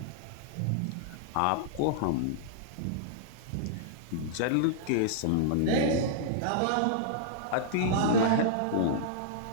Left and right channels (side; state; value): both; different; correlation -0.01